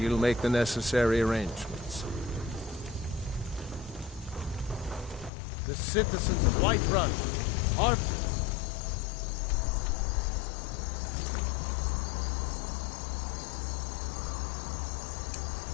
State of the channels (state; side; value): drops out; right; at 5.3 s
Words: make the necessary arrangements. The citizens of Whiterun are...